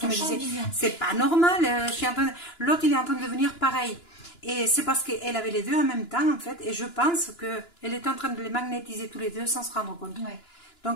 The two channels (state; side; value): late; right; 2.9 ms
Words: me disait, c'est pas normal, l'autre il est en train de devenir pareil. Et c'est parce qu'elle avait les deux en même temps, en fait, et je pense qu'elle était en train de les magnétiser tous les deux sans se rendre compte. Ouais.